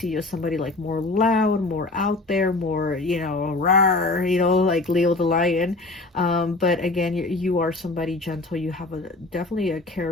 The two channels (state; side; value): quieter; right; 3.1 dB